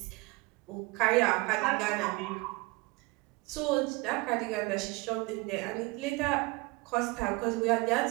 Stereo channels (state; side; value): quieter; left; 24.4 dB